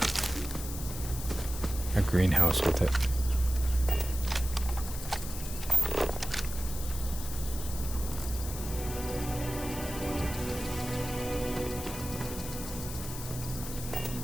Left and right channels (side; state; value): left; noise; hiss, 9 dB below the sound